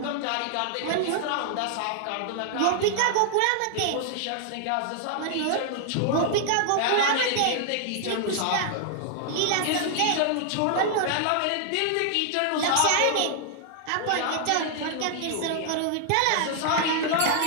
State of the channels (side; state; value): both; different; correlation 0.00